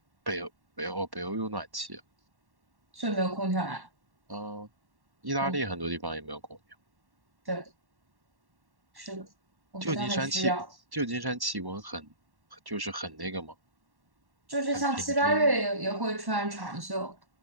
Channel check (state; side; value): late; left; 1.1 ms